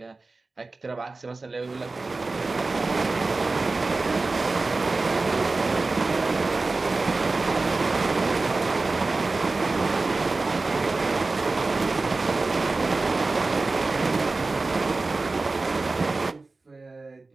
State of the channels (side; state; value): left; quieter; 3.5 dB